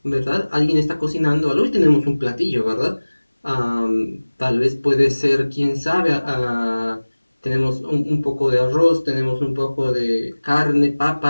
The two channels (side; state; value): both; inverted; correlation -1.00